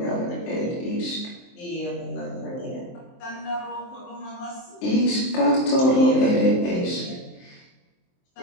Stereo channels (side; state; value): right; late; 23 ms